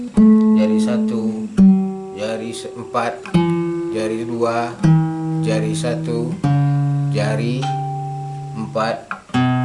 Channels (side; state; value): both; identical; correlation 1.00